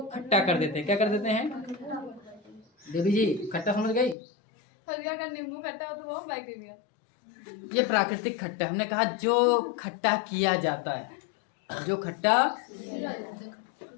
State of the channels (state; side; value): drops out; right; at 4.2 s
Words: खट्टा कर देते हैं। क्या कर देते हैं देवी जी? खट्टा समझ गई? नींबू खट्टा हो तो वो बैक्टीरिया। ये प्राकृतिक खट्टा, हमने कहा जो खट्टा किया जाता है, जो खट्टा।